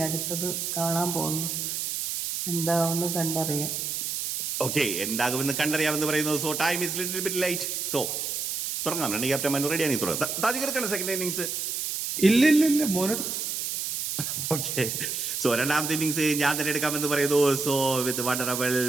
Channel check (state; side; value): noise; right; hiss, 3 dB below the sound